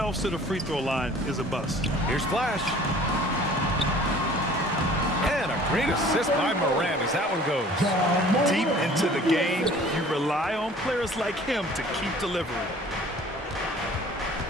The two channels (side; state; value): both; normal; correlation 0.50